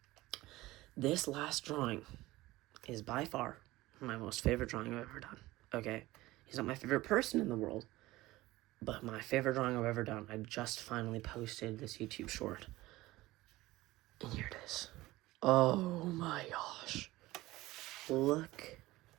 this last drawing is by far my most favorite drawing I've ever done, okay? He's not my favorite person in the world, but my favorite drawing I've ever done. I just finally posted this YouTube short, and here it is. Oh my gosh. Look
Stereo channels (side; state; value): left; quieter; 18.4 dB